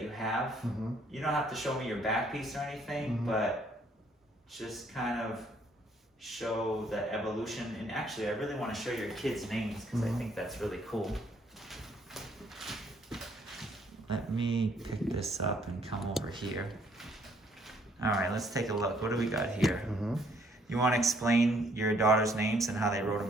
you have. Mm-hmm. You don't have to show me your back piece or anything, Mhm. but just kind of show the evolution. And actually, I really want to show your kids' names because I Mhm. think that's really cool. Let me pick this up and come over here. All right, let's take a look. What do we got here? Mm-hmm. You want to explain your daughter's names and how they wrote them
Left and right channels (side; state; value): both; normal; correlation 0.66